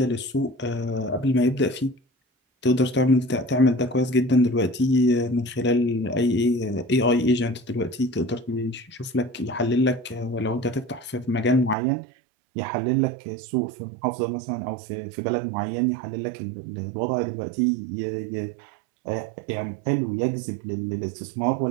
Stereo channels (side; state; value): left; drops out; at 11.8 s